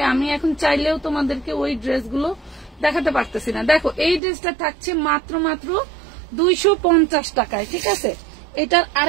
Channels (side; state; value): left; drops out; at 4.2 s